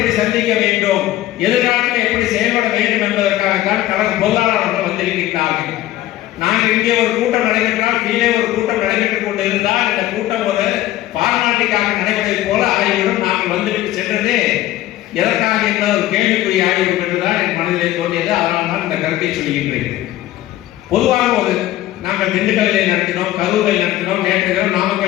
சந்திக்க வேண்டும், எதிர்காலத்தில் எப்படி செயல்பட வேண்டும் என்பதற்காகத்தான் கழக பொருளாளர்கள் வந்திருக்கின்றார்கள். நாங்கள் இங்கே ஒரு கூட்டம் நடைபெற்றால் கீழே ஒரு கூட்டம் நடைபெற்றுக் கொண்டு இருந்தால் இந்த கூட்டம் ஒரு பார்மாலிட்டிக்காக நடைபெறுவதை போல ஆகிவிடும். நாங்கள் வந்துவிட்டு சென்றதே எதற்காக என்ற ஒரு கேள்விக்குரிய ஆகிவிடும் என்றுதான் என் மனதிலே தோன்றியது. அதனால் தான் இந்த கருத்தை சொல்கின்றேன். பொதுவாக நாங்கள் திண்டுக்கல்லில் நடத்தினோம், கரூரில் நடத்தினோம், நேற்று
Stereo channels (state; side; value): quieter; right; 14.8 dB